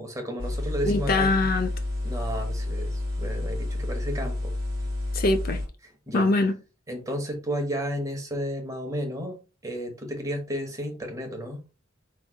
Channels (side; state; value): both; normal; correlation 0.67